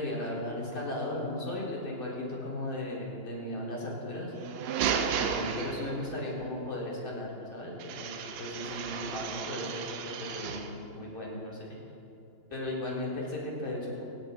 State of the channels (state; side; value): late; left; 2.9 ms